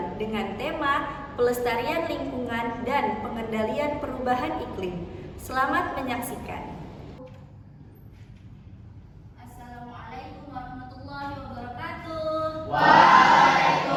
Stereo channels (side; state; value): both; identical; correlation 1.00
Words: dengan tema Pelestarian Lingkungan dan Pengendalian Perubahan Iklim. Selamat menyaksikan. Assalamualaikum warahmatullahi wabarakatuh.